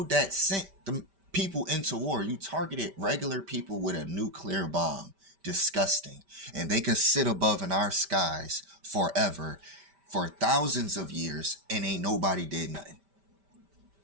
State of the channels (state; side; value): late; left; 5.1 ms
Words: that sent the people into war. You targeted regular people with a nuclear bomb. Disgusting. And they could sit above in our skies forever, for thousands of years, and ain't nobody did nothing.